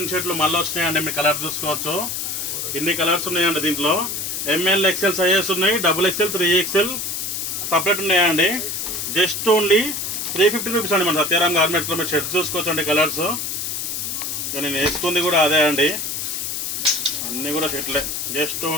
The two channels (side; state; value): left; noise; hiss, 3 dB below the sound